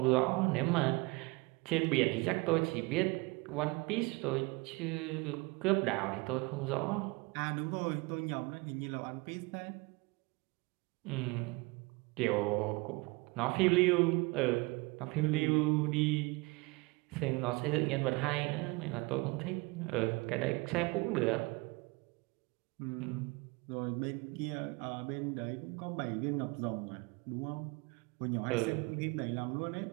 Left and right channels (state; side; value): quieter; left; 25.8 dB